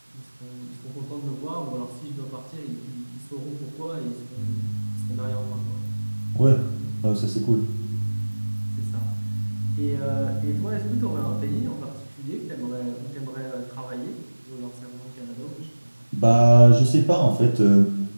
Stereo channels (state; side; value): inverted; both; correlation -1.00